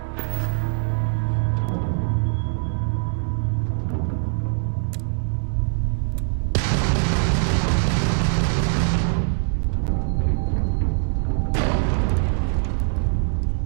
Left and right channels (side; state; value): left; silent; 64 dB below the other